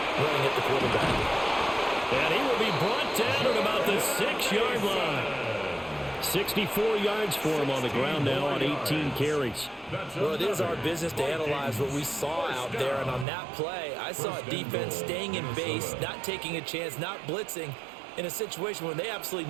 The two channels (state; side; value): drops out; left; at 13.2 s